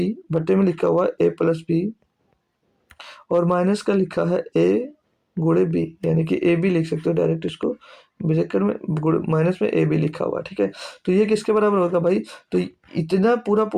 बट्टे में लिखा हुआ है ए प्लस बी, और माइनस का लिखा है ए गुणे बी, यानी कि ए बी लिख सकते हो डायरेक्ट इसको, ब्रैकेट में माइनस में ए बी लिखा हुआ। ठीक है, तो ये किसके बराबर होगा भाई, तो इतना पूरा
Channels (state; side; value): identical; both; correlation 1.00